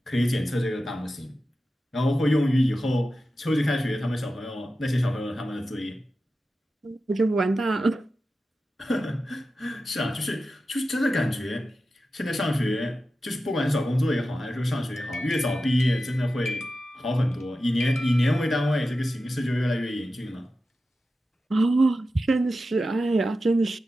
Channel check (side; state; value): both; normal; correlation 0.92